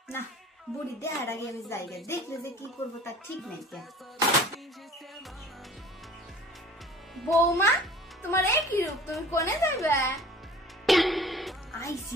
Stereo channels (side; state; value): both; normal; correlation 0.46